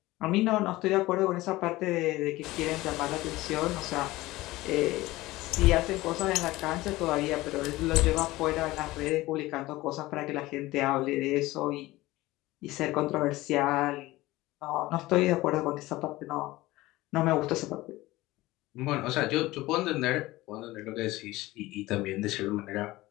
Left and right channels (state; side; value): quieter; right; 18.6 dB